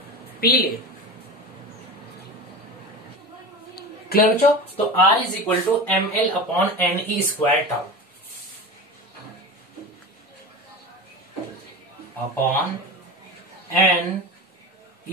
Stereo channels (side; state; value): both; normal; correlation 0.29